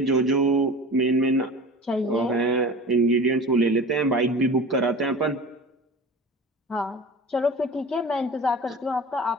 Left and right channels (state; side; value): normal; both; correlation 0.37